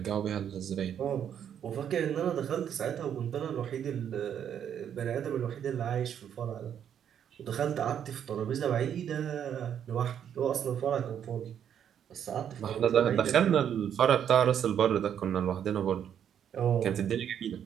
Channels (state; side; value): quieter; left; 9.1 dB